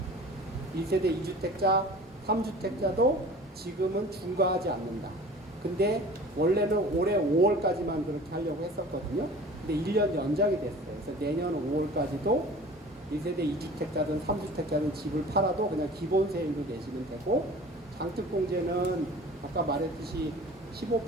1세대 2주택자, 3주택자도 지금은 중과하지 않는다. 근데 원래는 올해 5월까지만 그렇게 하려고 했었거든요. 근데 1년 연장이 됐어요. 그래서 내년 5월까지도 1세대 2주택자든 3주택자든 집을 팔아도 그냥 기본 세율로 내시면 되고, 장특공제는 아까 말했듯이 15%?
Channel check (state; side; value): normal; both; correlation 0.43